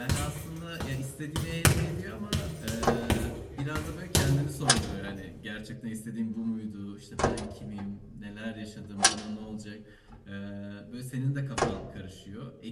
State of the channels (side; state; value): both; identical; correlation 1.00